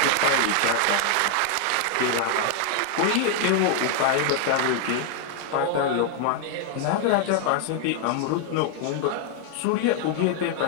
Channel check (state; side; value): different; both; correlation 0.00